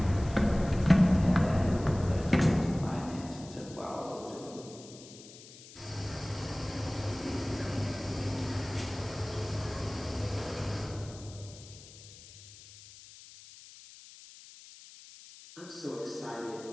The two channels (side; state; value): left; noise; hiss, 19 dB below the sound